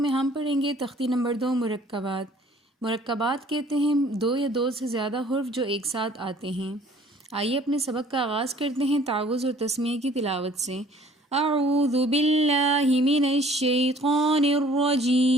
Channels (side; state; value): both; normal; correlation 0.55